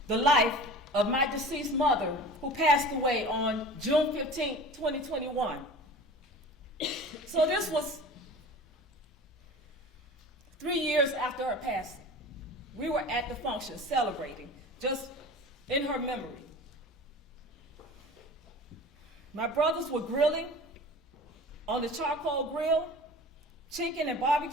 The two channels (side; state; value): both; normal; correlation 0.38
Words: the life of my deceased mother, who passed away on June 15, 2021. So this was 3 years after her passing. We were at the function celebrating, just in her memory. My brothers were grilling on the charcoal grill, chicken and